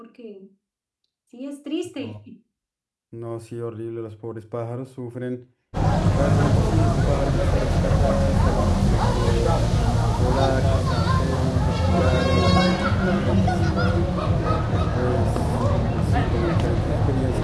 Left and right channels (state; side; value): identical; both; correlation 1.00